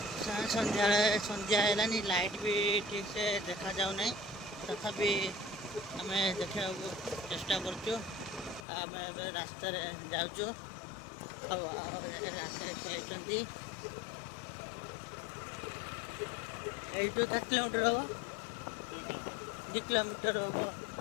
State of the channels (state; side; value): drops out; right; at 8.7 s